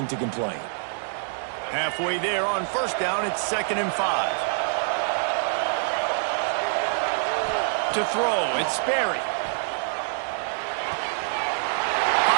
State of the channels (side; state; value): left; silent; digital silence